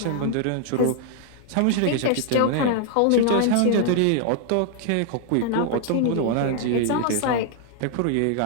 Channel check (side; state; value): both; different; correlation 0.00